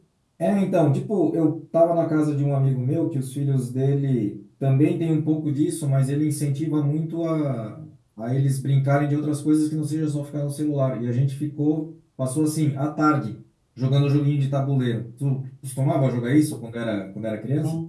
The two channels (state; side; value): identical; both; correlation 1.00